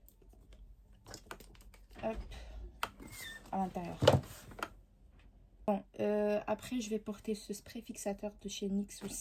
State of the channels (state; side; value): identical; both; correlation 1.00